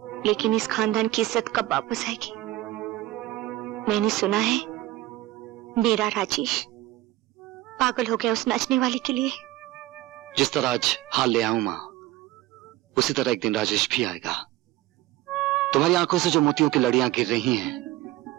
लेकिन इस खानदान की इज्जत कब वापस आएगी? मैंने सुना है मेरा राजेश पागल हो गया उस नाचने वाले के लिए। जिस तरह आज हाल ले आऊं मां, उसी तरह एक दिन राजेश भी आएगा। तुम्हारी आंखों से जो मोतियों की लड़ियां गिर रही हैं,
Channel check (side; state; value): left; quieter; 16.3 dB